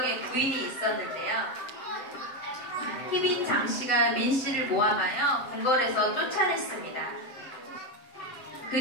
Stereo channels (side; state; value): right; late; 7.9 ms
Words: 부인이 있었는데요. 희빈 장씨가 민씨를 모함하여 궁궐에서 쫓아냈습니다.